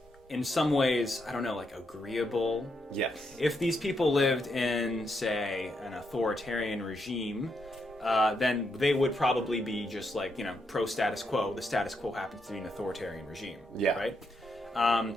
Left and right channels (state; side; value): normal; both; correlation 0.80